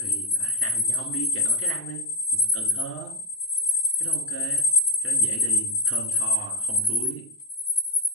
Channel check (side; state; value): both; normal; correlation 0.07